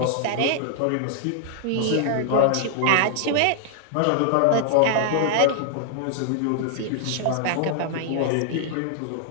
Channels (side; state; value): both; different; correlation 0.00